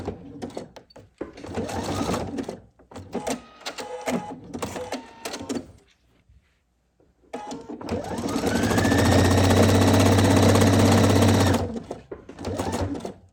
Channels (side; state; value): both; identical; correlation 1.00